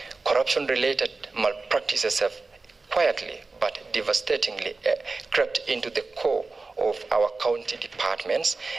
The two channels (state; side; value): quieter; left; 3.8 dB